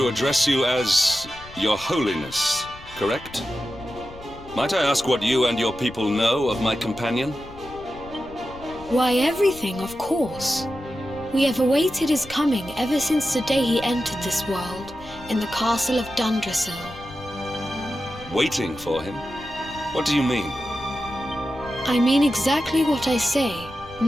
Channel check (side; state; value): left; noise; rumble, 18 dB below the sound